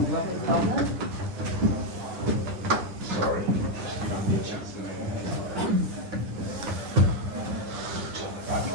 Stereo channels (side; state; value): left; late; 10 ms